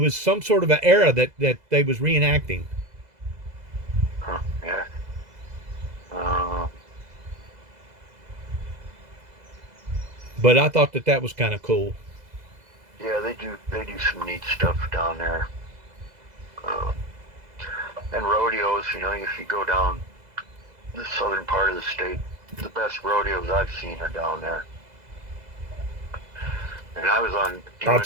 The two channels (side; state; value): left; late; 2.0 ms